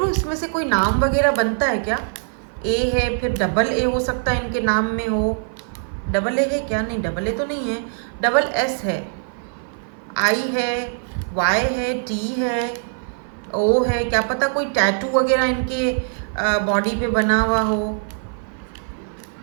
इसमें से कोई नाम वगैरह बनता है क्या? A है, फिर डबल A हो सकता है इनके नाम में हो। डबल A है क्या? नहीं, डबल A तो नहीं है, डबल S है, I है, Y है, T है, O है, क्या पता कोई टैटू वगैरह इनके बॉडी पे बना हुआ हो।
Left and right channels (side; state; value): left; silent; 55 dB below the other